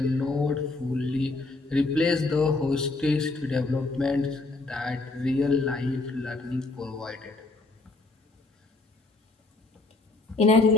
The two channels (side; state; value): right; quieter; 3.3 dB